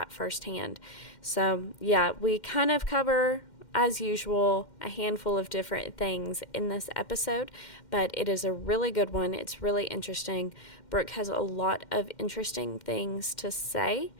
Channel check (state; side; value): late; right; 2.1 ms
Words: firsthand. So yeah, we kind of cover, as usual, a handful of different things in this episode, but it is a really good one. It's really interesting. Brooke has a lot of interesting things to say,